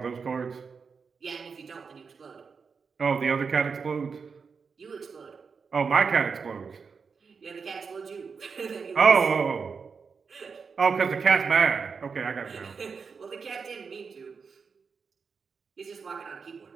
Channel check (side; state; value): left; quieter; 5.5 dB